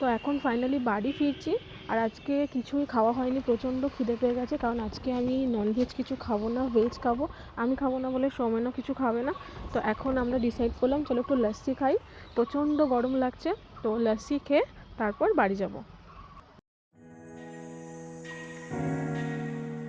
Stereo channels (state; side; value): identical; both; correlation 1.00